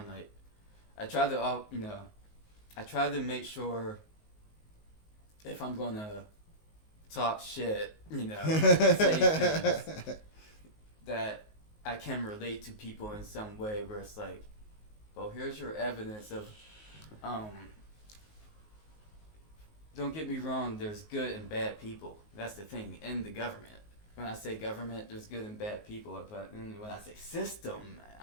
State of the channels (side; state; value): right; late; 19 ms